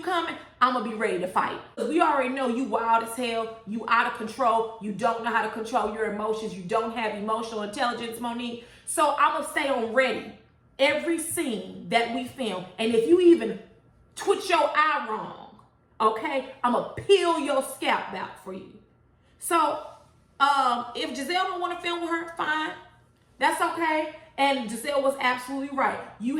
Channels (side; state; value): both; identical; correlation 1.00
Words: coming, I'm going to be ready to fight. We already know you wild as hell. You out of control. You don't know how to control your emotions. You don't have emotional intelligence, Monique. So I'm going to stay on ready every scene that we film. And if you even twitch your eye wrong, okay, I'm going to peel your scalp out for you. So if Gizelle don't want to film with her, fine. That's okay. And Gizelle was absolutely right. You